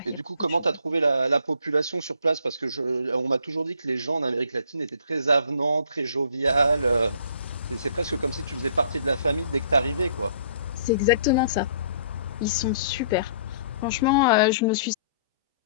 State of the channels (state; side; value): inverted; both; correlation -0.57